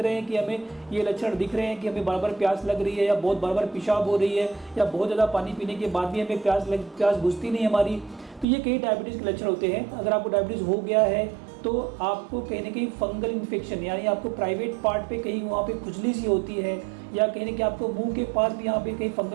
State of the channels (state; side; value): drops out; left; at 8.5 s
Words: हैं कि हमें ये लक्षण दिख रहे हैं कि हमें बार बार प्यास लग रही है, या बहुत बार बार पेशाब हो रही है, या बहुत ज़्यादा पानी पीने के बाद भी हमें प्यास बुझती नहीं हमारी, तो ये कई डायबिटीज़ के लक्षण होते हैं। अगर आपको डायबिटीज़ हो गया है तो आपको कहीं ना कहीं फंगल इन्फेक्शन, यानी आपको प्राइवेट पार्ट पे कहीं वहाँ पे खुजली सी होती है, या कहीं ना कहीं आपको मुंह के पास भी यहाँ पे कहीं